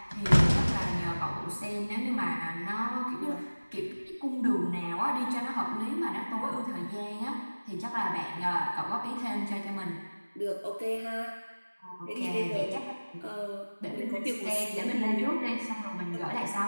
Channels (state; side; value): inverted; both; correlation -1.00